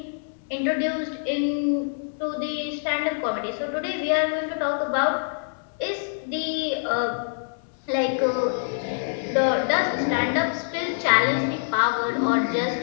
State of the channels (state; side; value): silent; right; 62 dB below the other